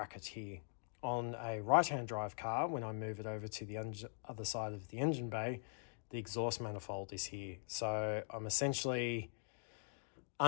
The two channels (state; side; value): silent; right; digital silence